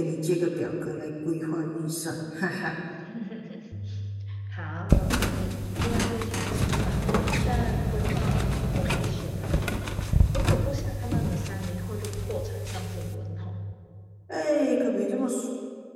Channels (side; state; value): both; identical; correlation 1.00